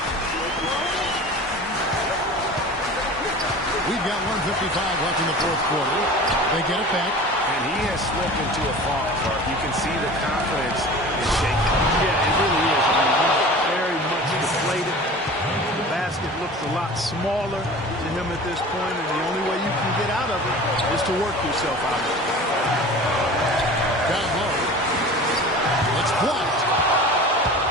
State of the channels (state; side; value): normal; both; correlation 0.39